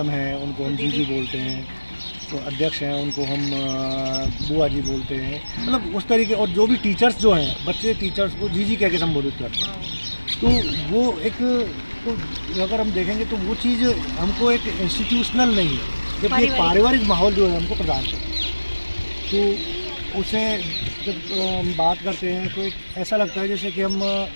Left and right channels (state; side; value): inverted; both; correlation -1.00